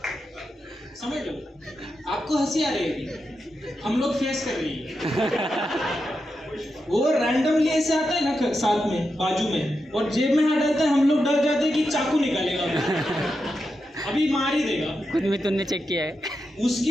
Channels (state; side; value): normal; both; correlation 0.87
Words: समझ लो, आपको हंसी आ रही है, हम लोग फेस कर रही है। वो रैंडमली ऐसे आता है ना साथ में, बाजू में, और जेब में हाथ डालता है, हम लोग डर जाते हैं कि चाकू निकालेगा, अभी मार ही देगा। खुद में तुमने चेक किया है।